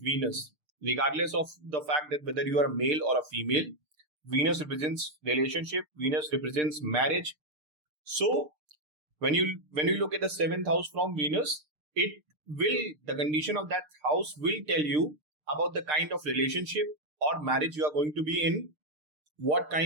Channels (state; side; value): late; left; 6.6 ms